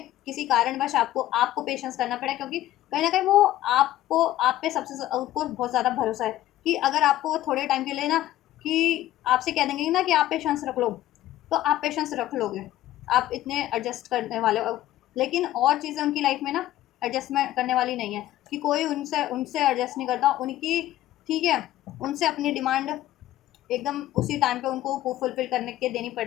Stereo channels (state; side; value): quieter; right; 14.2 dB